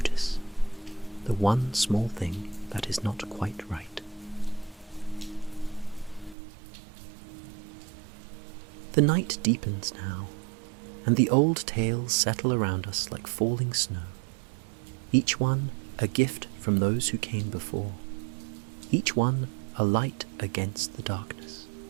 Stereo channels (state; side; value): drops out; left; at 6.4 s